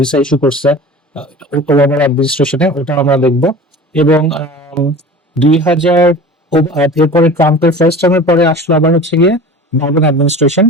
ভিসা ইস্যু করছে ওবামার অ্যাডমিনিস্ট্রেশনে, ওটা আমরা দেখবো। এবং 2000 এরপরে ট্রাম্পের ফার্স্ট টার্মের পরে আসলো আবার হচ্ছে গিয়ে বাইডেন অ্যাডমিনিস্ট্রেশন।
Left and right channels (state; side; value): normal; both; correlation 0.37